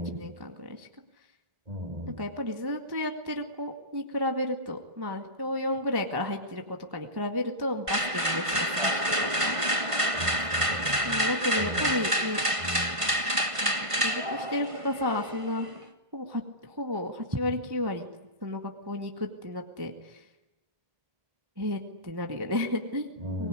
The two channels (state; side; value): late; left; 1.5 ms